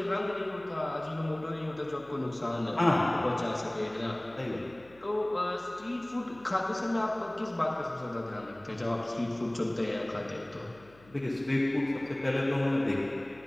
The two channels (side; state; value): left; noise; hum, 26 dB below the sound